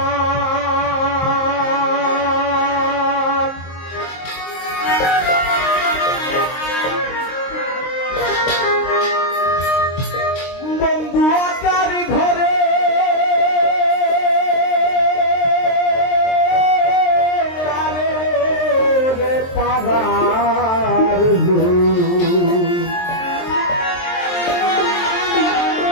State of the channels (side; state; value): right; late; 23 ms